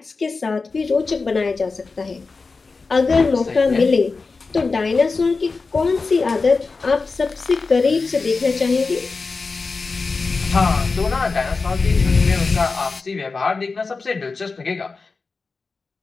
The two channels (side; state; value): right; quieter; 4.2 dB